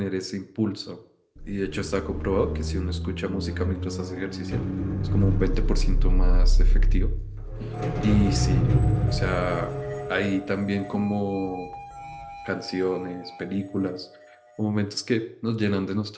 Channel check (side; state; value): both; identical; correlation 1.00